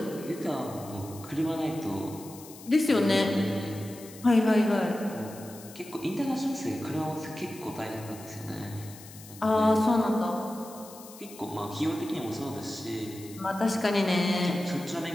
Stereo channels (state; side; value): noise; left; hiss, 18 dB below the sound